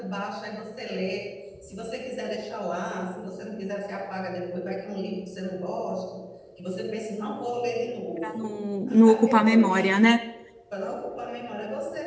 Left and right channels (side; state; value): both; identical; correlation 1.00